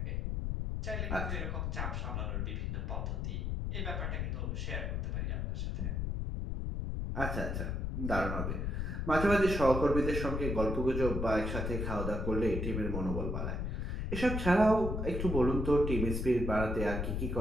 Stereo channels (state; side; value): noise; left; rumble, 1 dB below the sound